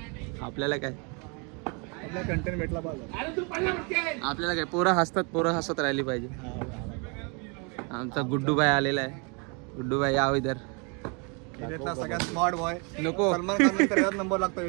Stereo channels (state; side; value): quieter; left; 33.6 dB